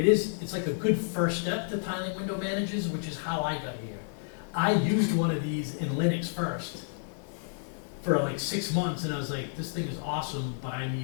like a good first step to tiling window managers, which is how I got here. I used one of these in Linux first for like 6 months, and I was like, this thing is awesome, but I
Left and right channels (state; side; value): silent; right; digital silence